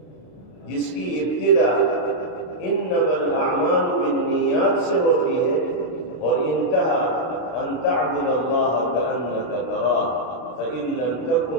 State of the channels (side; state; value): right; late; 32 ms